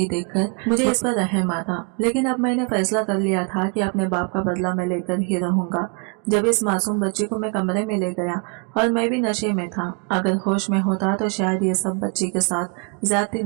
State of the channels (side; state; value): left; quieter; 34.9 dB